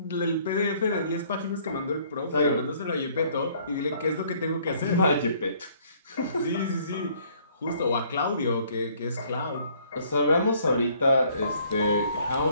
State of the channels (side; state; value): both; inverted; correlation -0.61